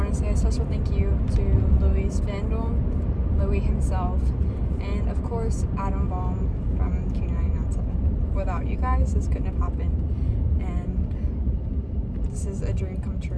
to say a special thank you to Louie's fandom, Louie himself, and of course Adam Baum from Q997. Without you guys, this couldn't have happened, and this is a dream come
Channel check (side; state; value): both; identical; correlation 1.00